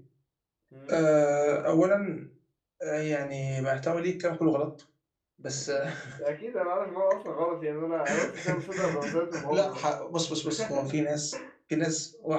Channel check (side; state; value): both; identical; correlation 1.00